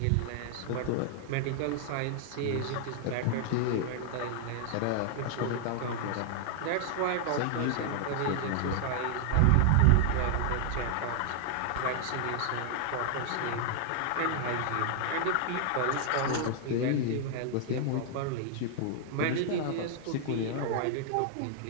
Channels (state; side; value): different; both; correlation 0.00